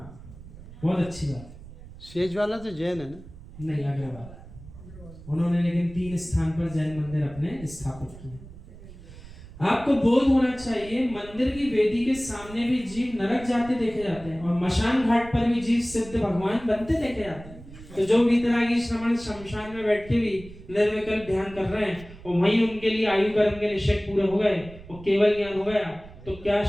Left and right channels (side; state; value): right; noise; rumble, 17 dB below the sound